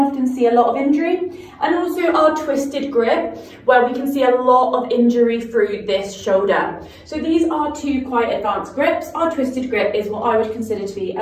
see a lot of injury, and also our twisted grip, where we can see a lot of injury through this shoulder. So these are two quite advanced grips. Our twisted grip is what I would consider to be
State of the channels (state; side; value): identical; both; correlation 1.00